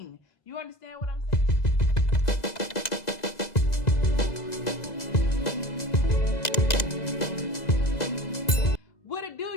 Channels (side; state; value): right; late; 2.0 ms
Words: You understand what I'm saying? What it